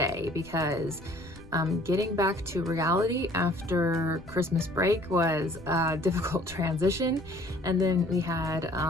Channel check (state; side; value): noise; left; rumble, 19 dB below the sound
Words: because getting back to reality after Christmas break was a difficult transition. And then we had